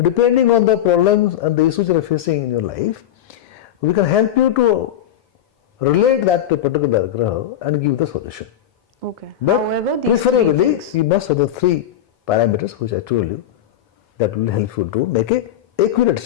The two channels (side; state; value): right; quieter; 10.9 dB